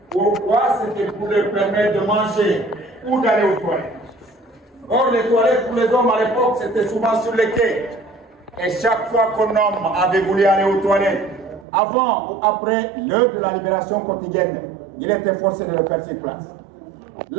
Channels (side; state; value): left; drops out; at 11.7 s